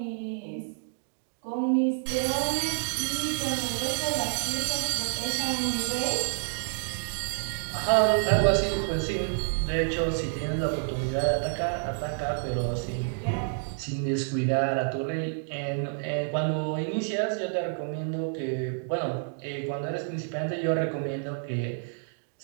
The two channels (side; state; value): left; silent; digital silence